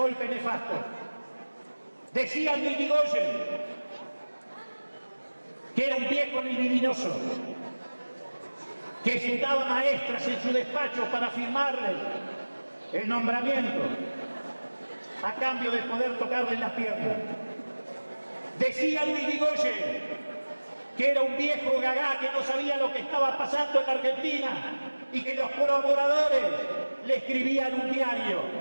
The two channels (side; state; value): both; inverted; correlation -1.00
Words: nefasto. Decían de Irigoyen que era un viejo libidinoso, que citaba maestras en su despacho para firmarles el nombramiento a cambio de poder tocarle las piernas. Decían de Irigoyen que era un viejo gagá que no sabía lo que estaba pasando en la Argentina y que los colaboradores le escribían un diario.